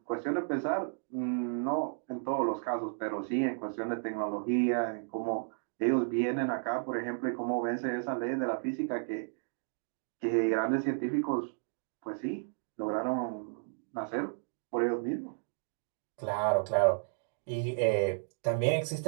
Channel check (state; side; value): silent; left; digital silence